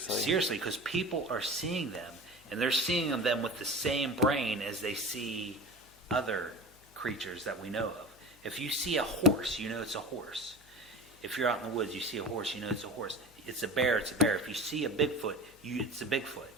Because people are seeing them, and they're seeing them with the same brain as they see other creatures that we know of. If you see a horse, you know it's a horse. If you're out in the woods, you see a horse, you know it's a horse. It's a bear, it's a bear. If you see a Bigfoot, it's a Bigfoot.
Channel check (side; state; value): left; noise; hum, 27 dB below the sound